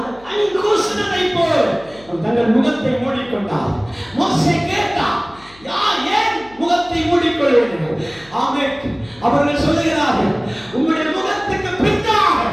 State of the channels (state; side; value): noise; left; hum, 25 dB below the sound